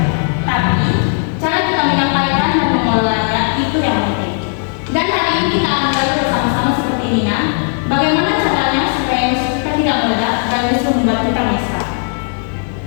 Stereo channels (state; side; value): silent; right; 56 dB below the other